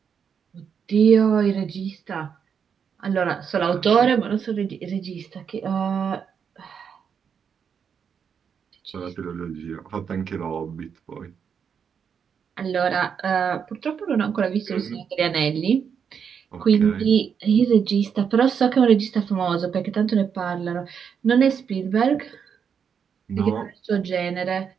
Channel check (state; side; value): quieter; left; 7.1 dB